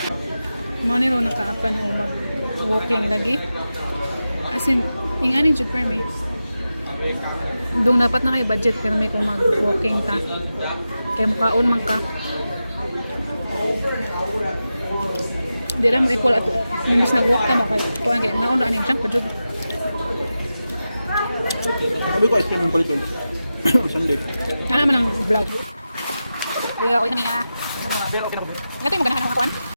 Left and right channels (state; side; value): inverted; both; correlation -0.92